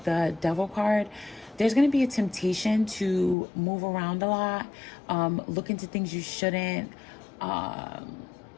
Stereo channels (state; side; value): drops out; right; at 3.4 s